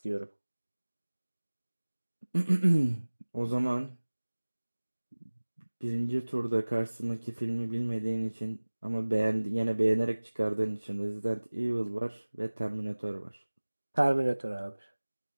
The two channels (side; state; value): both; inverted; correlation -1.00